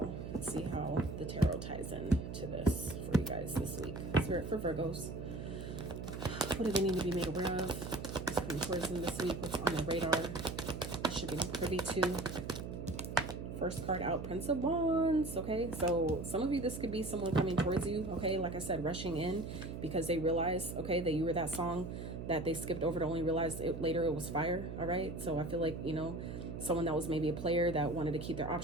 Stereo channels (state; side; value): noise; right; hum, 7 dB below the sound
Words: Let's see how the tarot ties in to this for you guys this week. Spirit for Virgos. What do they need to be made aware of? What's coming towards them this week? What's on their radar? They should be privy to. First card out, Prince of Wands. Okay, so some of you, this could be someone coming towards you. Okay, like I said, rushing in because they realize, okay, that you were that song that they skipped over to only realize later it was fire. All right, so I feel like, you know, someone that was maybe a player that wanted to keep their